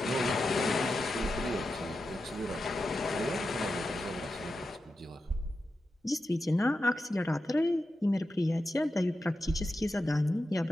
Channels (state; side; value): normal; both; correlation 0.90